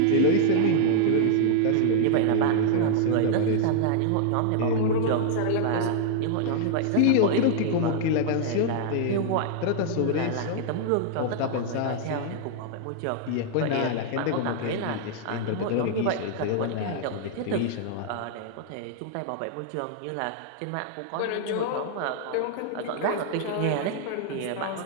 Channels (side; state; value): both; different; correlation -0.01